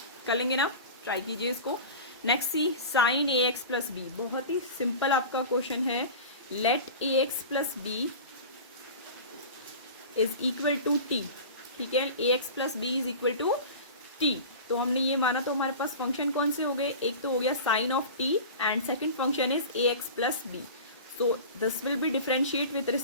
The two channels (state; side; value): inverted; both; correlation -0.34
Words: कर लेंगे ना, ट्राई कीजिए इसको। Next c sine a x plus b, बहुत ही सिंपल आपका क्वेश्चन है। Let a x plus b is equal to t. ठीक है, a x plus b is equal to t, तो हमने ये माना, तो हमारे पास फंक्शन कौन से हो गए, एक तो हो गया sine of t and second function is a x plus b. So this will be differentiate with